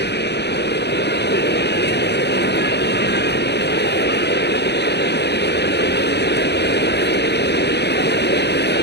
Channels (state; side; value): late; right; 0.49 ms